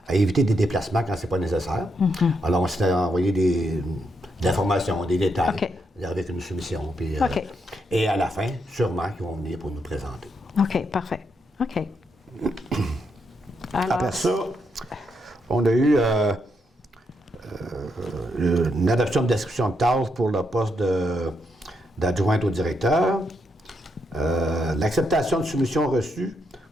éviter des déplacements quand ce n'est pas nécessaire. Alors, on s'est envoyé des informations, des détails avec une soumission. Puis, et à la fin, sûrement, ils vont venir pour nous présenter. OK, parfait. OK. Alors, après ça, on a eu une adoption de description de tâches pour le poste d'adjointe au directeur. L'acceptation de soumission reçue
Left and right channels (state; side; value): normal; both; correlation 0.79